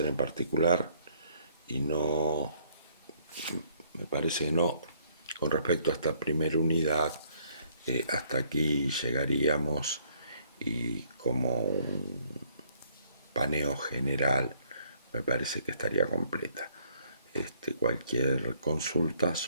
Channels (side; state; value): both; inverted; correlation -0.64